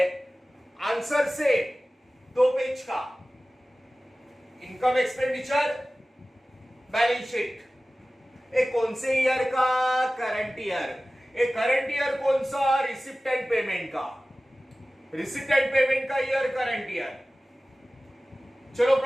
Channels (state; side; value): normal; both; correlation 0.97